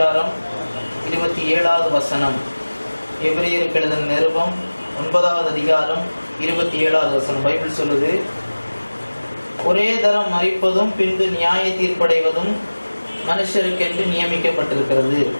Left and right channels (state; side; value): inverted; both; correlation -1.00